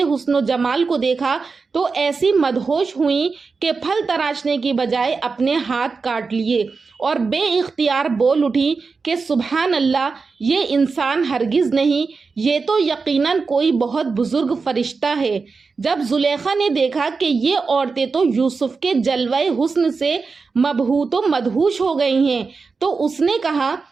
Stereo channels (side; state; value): left; quieter; 4.6 dB